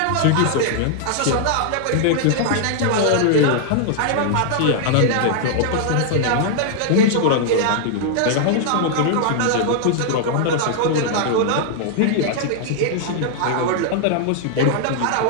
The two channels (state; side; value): different; both; correlation -0.01